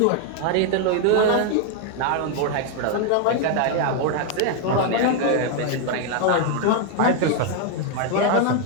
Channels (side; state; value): both; different; correlation 0.00